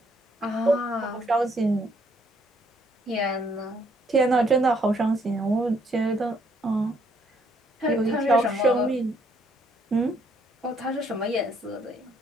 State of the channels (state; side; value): normal; both; correlation 0.68